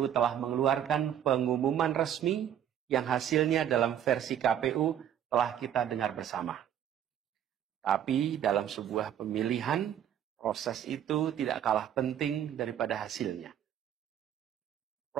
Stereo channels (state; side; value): quieter; left; 10.0 dB